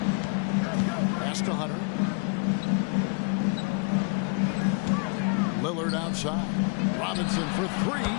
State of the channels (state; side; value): quieter; right; 33.9 dB